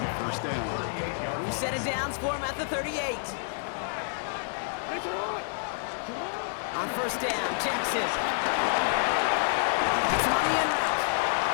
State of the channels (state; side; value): silent; right; digital silence